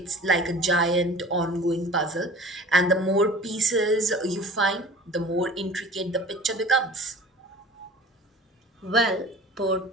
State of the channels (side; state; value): both; normal; correlation 0.42